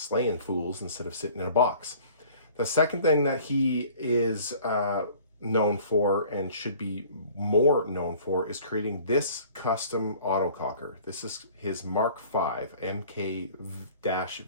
fools instead of sitting in a box. The second thing that he is known for and should be more known for is creating this custom autococker. This is his Mark 5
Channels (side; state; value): both; inverted; correlation -0.50